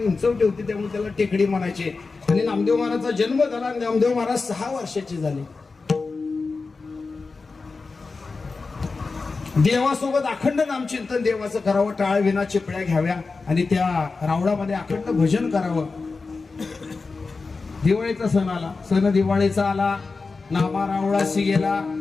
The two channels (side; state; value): right; quieter; 4.2 dB